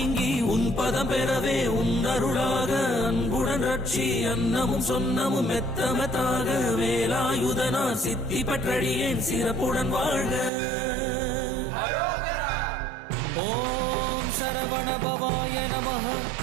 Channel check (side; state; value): left; drops out; at 10.5 s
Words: உன் பதம் பெறவே உன் அருளாக அன்புடன் புரட்சி அன்னமும் சொன்னமும் மெத்தமத்தாக வேலாயுதனார் சித்தி பற்றடியேன் சிறப்புடன் வாழ்க. ஓம் சரவண பவாய நமஹ.